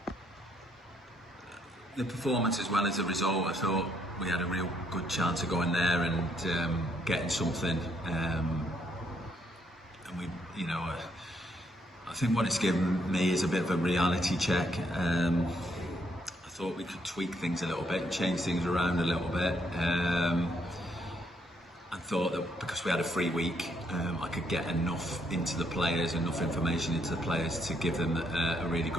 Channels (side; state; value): both; normal; correlation 0.72